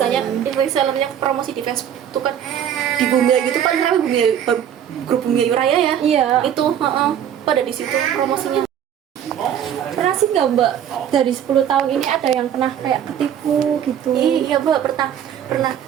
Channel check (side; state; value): left; quieter; 9.6 dB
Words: resellernya promosi di Facebook itu kan di Bumi Ayu itu paling ramai grup Bumi Ayu Raya ya. Iya. Itu pada di situ promosinya. Pernah sih nggak mbak dari 10 tahun ini ada yang pernah kayak ketipu gitu? Iya mbak, pernah.